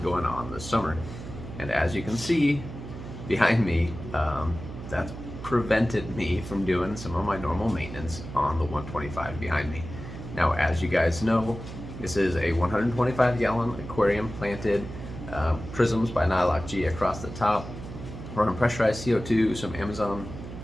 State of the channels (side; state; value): right; noise; hum, 11 dB below the sound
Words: going on this summer. And as you can see behind me, that's prevented me from doing some of my normal maintenance on the 125 behind me. Now, as you guys know, this is a 125-gallon aquarium planted, prisms by Nylock G across the top, running pressurized CO2, some